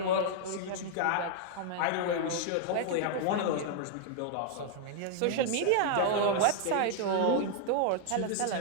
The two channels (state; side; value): different; both; correlation 0.00